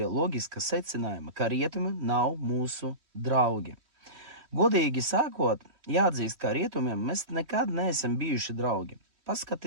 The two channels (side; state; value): left; late; 3.1 ms